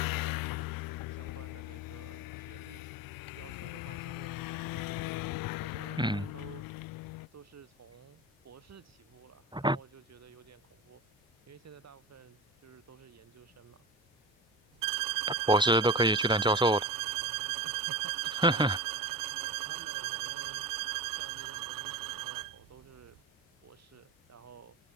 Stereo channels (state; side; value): normal; both; correlation 0.28